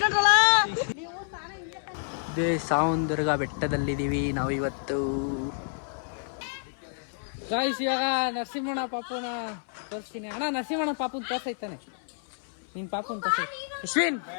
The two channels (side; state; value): right; silent; 59 dB below the other